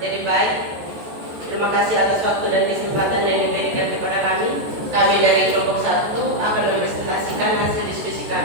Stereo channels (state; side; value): late; left; 14 ms